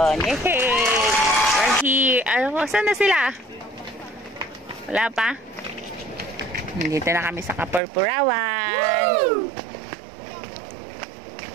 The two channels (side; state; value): left; drops out; at 7.8 s